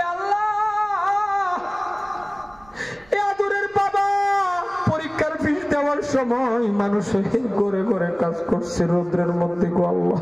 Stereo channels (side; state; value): right; noise; rumble, 26 dB below the sound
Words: আল্লাহ এ আদরের বাবা পরীক্ষার ফিস দেওয়ার সময় মানুষের ঘরে ঘরে কাজ করছে রৌদ্রের মধ্যে গো আল্লাহ।